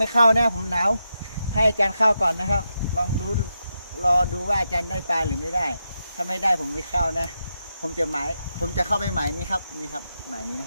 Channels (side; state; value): both; inverted; correlation -0.86